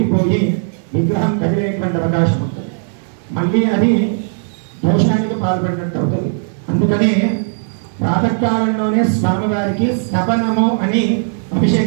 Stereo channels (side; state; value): left; silent; digital silence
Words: విగ్రహం కదిలేటువంటి అవకాశం ఉంటుంది. మళ్ళీ అది దోషానికి పాల్పడినట్టు అవుతుంది. అందుకనే ప్రాతకాలంలోనే స్వామివారికి స్తపనము అని